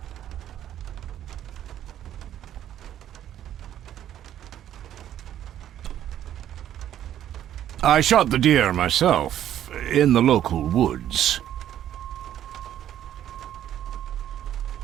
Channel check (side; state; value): left; quieter; 11.2 dB